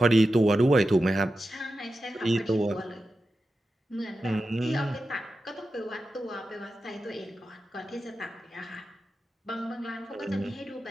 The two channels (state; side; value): normal; both; correlation 0.91